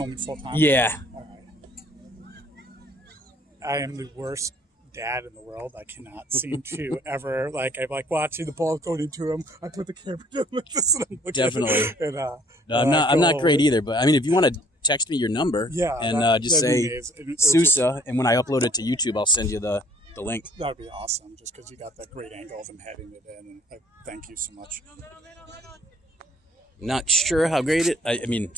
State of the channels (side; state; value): both; normal; correlation 0.59